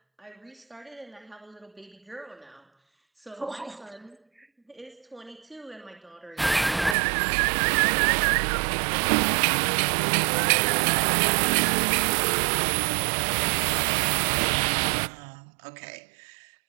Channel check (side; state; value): left; drops out; at 7.0 s